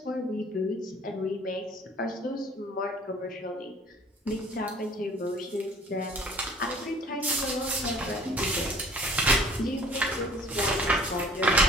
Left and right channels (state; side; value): normal; both; correlation 0.52